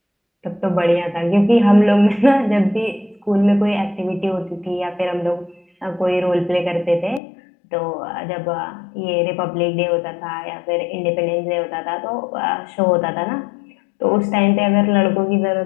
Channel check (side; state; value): right; drops out; at 7.2 s